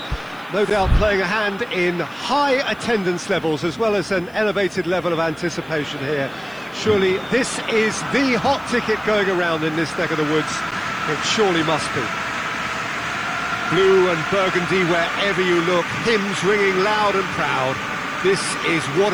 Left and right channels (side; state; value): left; noise; hiss, 30 dB below the sound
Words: No doubt playing a hand in high attendance levels as well as an elevated level of anticipation here. Surely this is the hot ticket going around in this neck of the woods. It surely must be. Blue and burgundy wherever you look, hymns ringing loud and proud. This is what